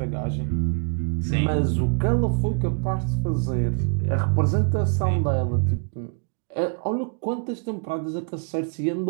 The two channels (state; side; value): quieter; left; 38.6 dB